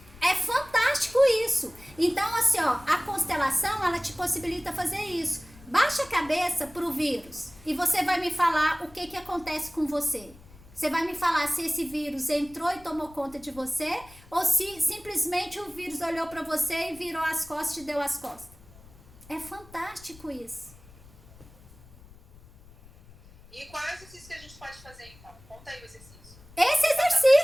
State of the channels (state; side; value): noise; left; rumble, 23 dB below the sound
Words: É fantástico isso. Então, assim, ó, a constelação, ela te possibilita fazer isso. Baixa a cabeça pro vírus e você vai me falar o que acontece com você. Você vai me falar se esse vírus entrou e tomou conta de você ou se simplesmente o vírus olhou para você e virou as costas e te deu as costas. É fantástico isso. E qual é o exercício que a gente pode fazer, então? Conta aí o exercício. Esse